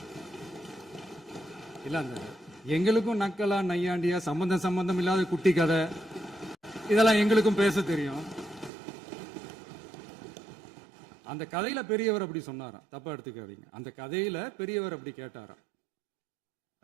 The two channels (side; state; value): left; drops out; at 8.7 s